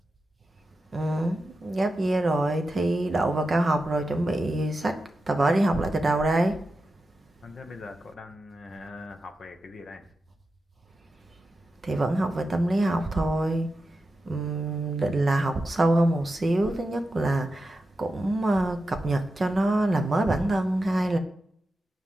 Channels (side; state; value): both; normal; correlation 0.90